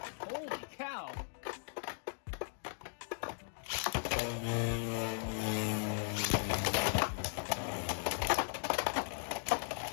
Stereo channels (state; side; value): silent; right; digital silence